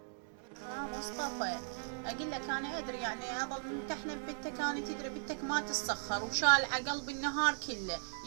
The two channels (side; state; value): left; silent; digital silence